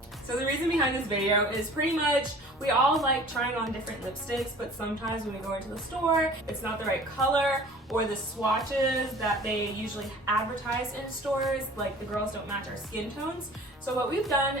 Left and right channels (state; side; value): normal; both; correlation 0.46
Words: So the reason behind this video is pretty much we all like trying on different lipsticks, but sometimes when we go into the store, it's not the right color, or the swatches that they usually advertise in stores, like the girls don't match our skin tones. So what we've done